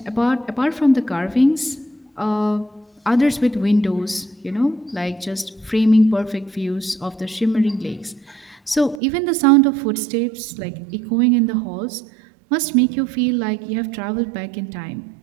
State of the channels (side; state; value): left; drops out; at 9.0 s